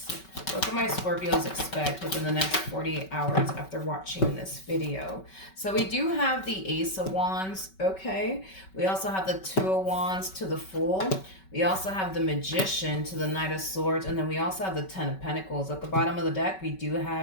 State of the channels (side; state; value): right; late; 5.3 ms